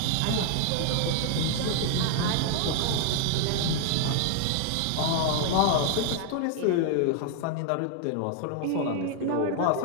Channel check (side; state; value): both; different; correlation 0.00